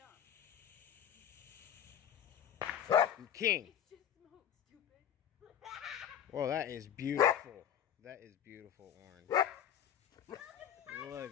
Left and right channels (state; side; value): quieter; right; 9.7 dB